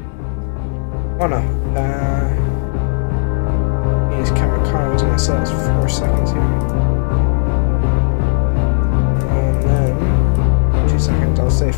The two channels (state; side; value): silent; right; 69 dB below the other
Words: Oh no. Use camera car, wasn't it? So that's 4 seconds here. And then 2 seconds, I'll say